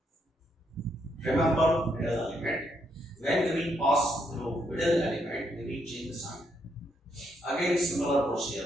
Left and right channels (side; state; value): both; normal; correlation 0.76